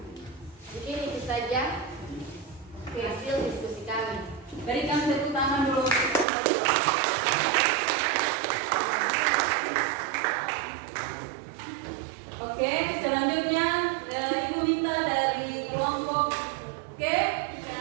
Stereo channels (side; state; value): left; drops out; at 6.2 s